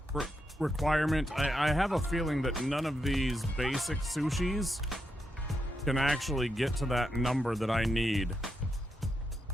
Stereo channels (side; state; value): both; normal; correlation 0.83